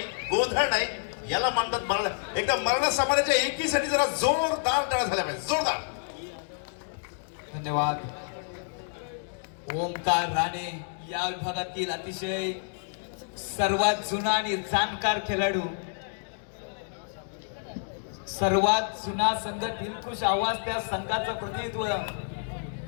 गोंधळ नाही. याला मानतात मराठा. एकदा मराठा समाजाच्या एकीसाठी जरा जोरदार टाळ्या झाल्या पाहिजे, जोरदार. धन्यवाद. ओमकार राणे या विभागातील अतिशय सर्वात जुना आणि जाणकार खेळाडू. सर्वात जुना संघ दिलखुश आवाज त्या संघाचं प्रतिनिधित्व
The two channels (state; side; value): silent; right; digital silence